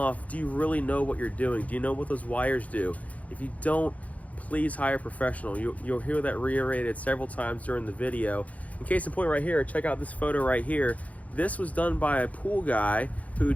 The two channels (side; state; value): right; late; 0.069 ms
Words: do you really know what you're doing? Do you know what those wires do? If you don't, please hire a professional. You'll hear that reiterated several times during the video. In case in point right here, check out this photo right here. This was done by a pool guy who